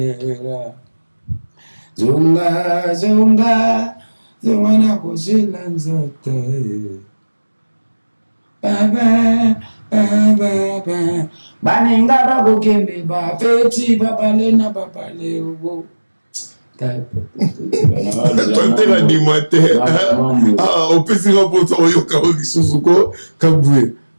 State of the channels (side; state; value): both; inverted; correlation -1.00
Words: zunga na kusila nzote baba baninga bakokembe bafeti babale na babale ubo tantela ndima te opesika mposa oyoka o lisusu ko kabwe